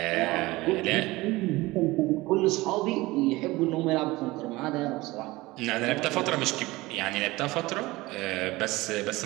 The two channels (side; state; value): left; quieter; 20.3 dB